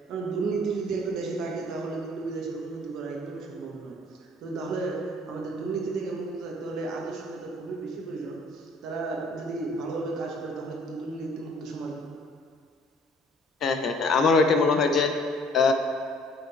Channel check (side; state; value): both; normal; correlation 0.56